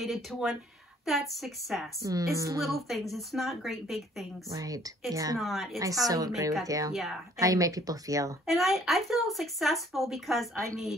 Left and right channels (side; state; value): both; normal; correlation 0.59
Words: to one, that's success. It's little things. It's not great big things. Right. It's not. It's I how so you agree make with you. Yeah. How you make people feel. And I feel successful because I